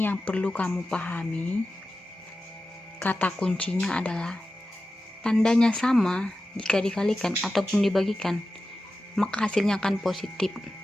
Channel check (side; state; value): both; normal; correlation 0.93